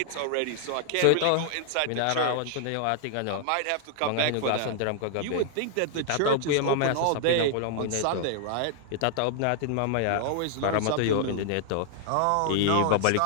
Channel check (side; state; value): both; different; correlation 0.00